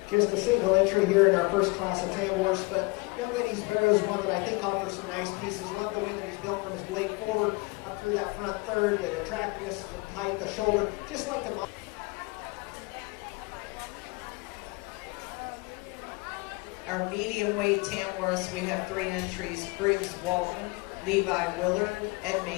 Just a single entry here in our first class of Tamworth, but Young Lady's Barrow is one that I think offers some nice pieces. Love the way that he's built from his blade forward up through that front third, the attractiveness, the height, the shoulder, just like the Our medium weight Tamworths, we have 3 entries: Briggs Walton, Levi Willard, and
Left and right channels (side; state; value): right; quieter; 26.4 dB